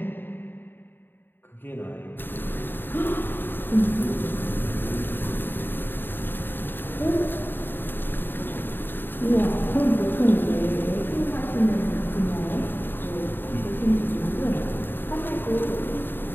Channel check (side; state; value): right; late; 0.096 ms